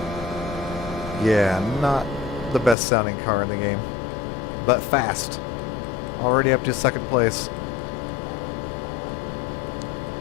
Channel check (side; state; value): right; drops out; at 2.8 s